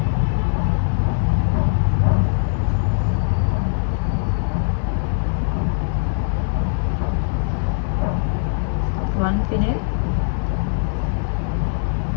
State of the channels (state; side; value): silent; right; digital silence